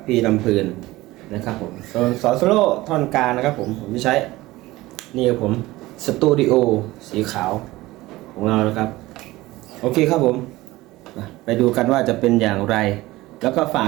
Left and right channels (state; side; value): quieter; left; 18.6 dB